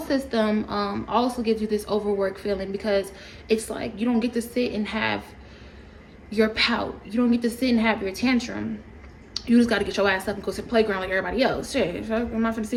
also gives you this overwork feeling, because it's like you don't get to sit and have your pout. You don't get to sit and have your tantrum. You just got to get your ass up and go to the playground like everybody else. Shit, I'm not gonna sit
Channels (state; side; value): identical; both; correlation 1.00